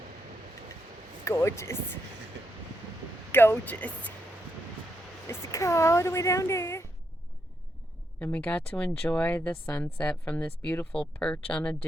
Gorgeous. Gorgeous. It's the car all the way down there. And we got to enjoy the sunset from this beautiful perch on a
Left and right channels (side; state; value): both; normal; correlation 0.81